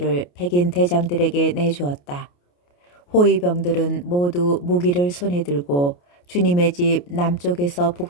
백인 대장들에게 내주었다. 호위병들은 모두 무기를 손에 들고 주님의 집 남쪽에서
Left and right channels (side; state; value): right; late; 28 ms